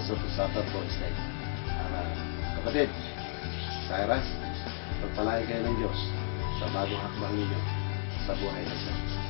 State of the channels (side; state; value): right; silent; digital silence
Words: to suffer for His name. Kapatid, Cyrus, pagpalain kayo ng Diyos sa bagong hakbang ninyo sa buhay na ito.